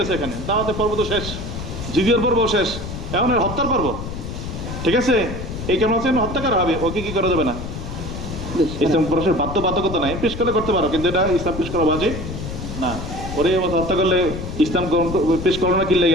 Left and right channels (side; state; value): left; noise; rumble, 7 dB below the sound